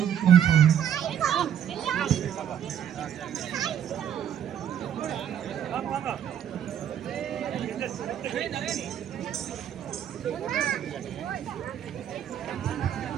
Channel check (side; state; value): left; quieter; 9.3 dB